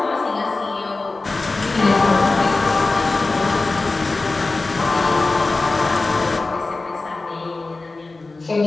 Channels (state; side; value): quieter; right; 3.4 dB